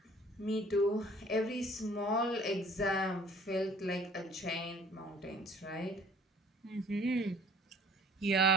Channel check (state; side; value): normal; both; correlation 0.53